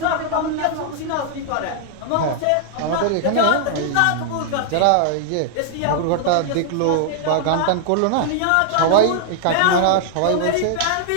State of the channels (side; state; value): both; different; correlation -0.01